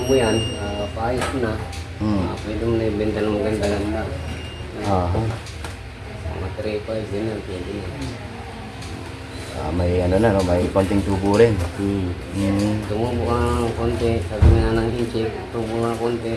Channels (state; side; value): identical; both; correlation 1.00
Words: mo yan, paayos mo na. Pwede mo na ibenta ng maganda-ganda. Aha. Mga 3-5 din yan, pwede na. May ano na, no? May konting tubo rin. Tumubo ka ng konti, sabi nga ng inchik, tumubo ka ng konti,